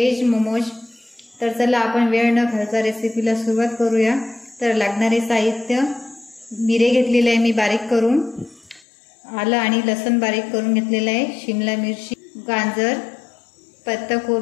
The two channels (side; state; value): right; drops out; at 8.8 s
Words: मोमोज। तर चला आपण वेळ न घालता रेसिपीला सुरुवात करूया। तर लागणारे साहित्य, मिरे घेतलेले आहे मी बारीक करून, आलं आणि लसूण बारीक करून घेतलेलं आहे, शिमला मिरची, गाजर,